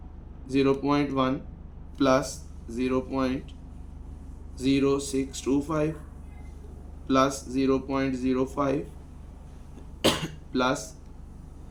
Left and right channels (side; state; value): both; identical; correlation 1.00